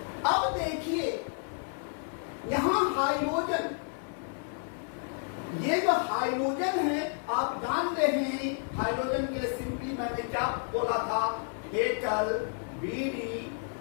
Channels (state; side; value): silent; right; 57 dB below the other